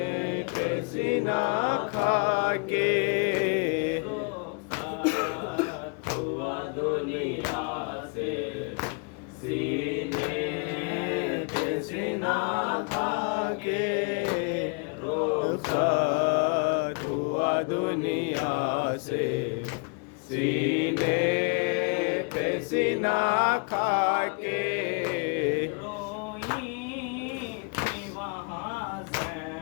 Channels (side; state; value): right; quieter; 36.6 dB